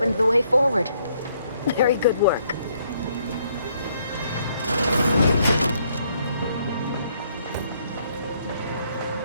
the way forward. Very good work.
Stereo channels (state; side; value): inverted; both; correlation -0.69